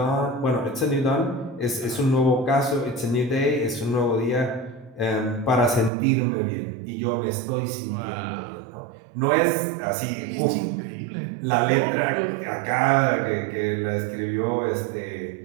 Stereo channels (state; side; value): drops out; left; at 5.9 s